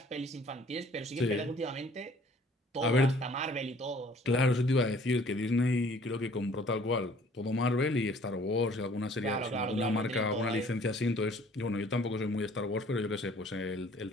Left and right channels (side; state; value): both; normal; correlation 0.55